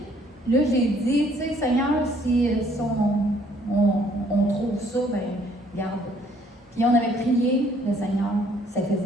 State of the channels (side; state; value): both; normal; correlation 0.62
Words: là, j'ai dit, tu sais, Seigneur, si on trouve ça, ben, regarde. Puis on avait prié, le Seigneur, ça